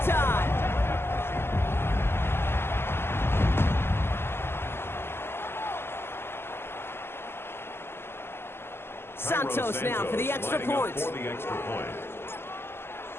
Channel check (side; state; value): right; late; 0.12 ms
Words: Santos now for the extra point.